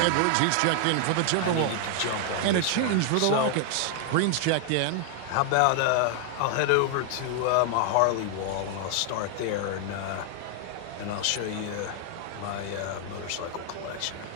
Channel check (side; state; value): both; different; correlation 0.00